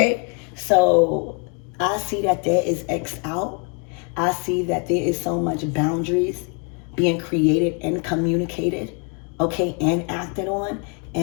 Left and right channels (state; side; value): quieter; right; 37.4 dB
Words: So I see that there is X out. I see that there is so much boundaries being created and communicated, okay, and acted on.